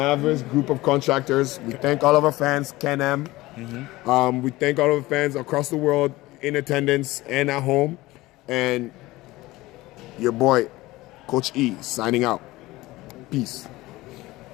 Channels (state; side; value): quieter; right; 19.0 dB